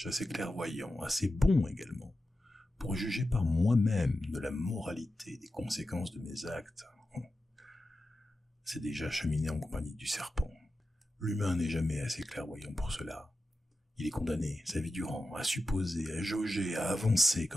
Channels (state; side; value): normal; both; correlation 0.92